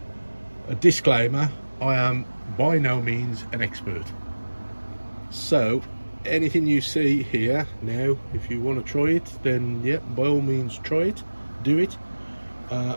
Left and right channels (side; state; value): both; inverted; correlation -1.00